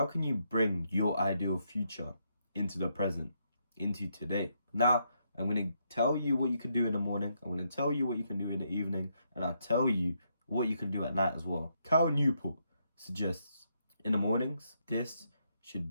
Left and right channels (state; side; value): inverted; both; correlation -0.77